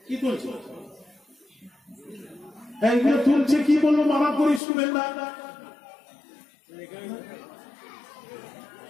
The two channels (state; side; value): drops out; right; at 4.6 s